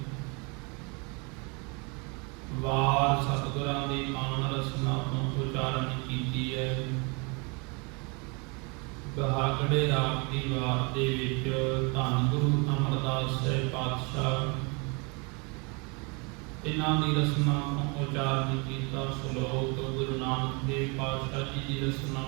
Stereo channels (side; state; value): left; quieter; 31.1 dB